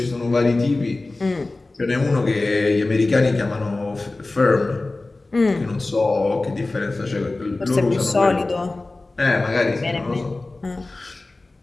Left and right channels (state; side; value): quieter; right; 3.1 dB